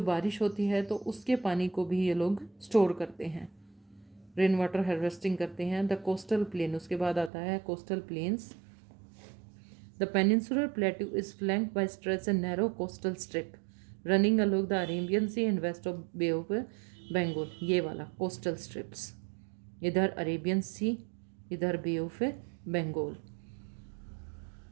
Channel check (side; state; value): left; drops out; at 7.3 s